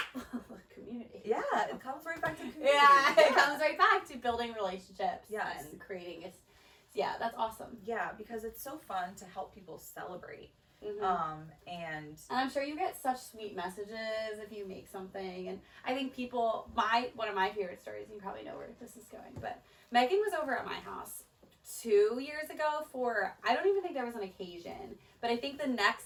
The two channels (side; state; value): both; identical; correlation 1.00